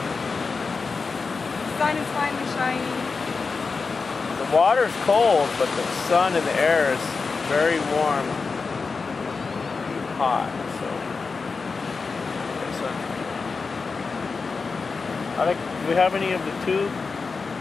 The sun is finally shining. The water's cold, but the sun and the air is very warm, hot. Do we have any of the two?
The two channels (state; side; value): quieter; right; 4.6 dB